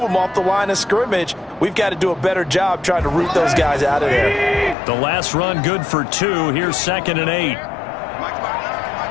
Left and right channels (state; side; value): drops out; right; at 4.8 s